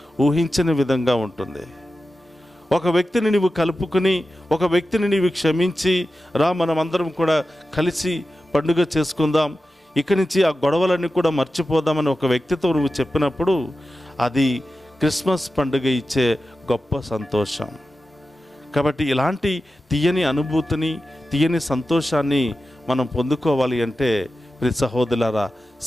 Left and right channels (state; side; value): normal; both; correlation 0.93